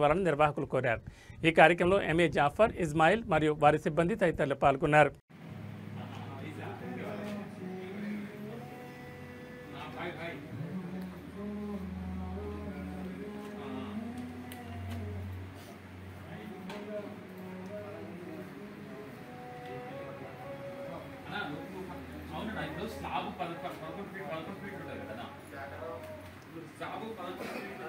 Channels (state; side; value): identical; both; correlation 1.00